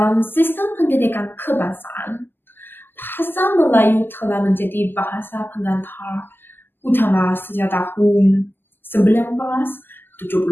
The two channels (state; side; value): late; right; 0.097 ms